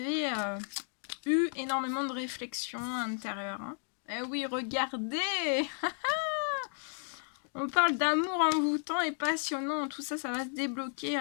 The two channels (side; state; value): right; silent; 56 dB below the other